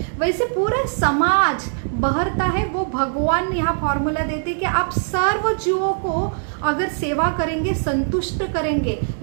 वैसे पूरा समाज बहरता है। वो भगवान यहाँ फॉर्मूला देते कि आप सर्व जीवों को अगर सेवा करेंगे, संतुष्ट करेंगे,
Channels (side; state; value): left; silent; digital silence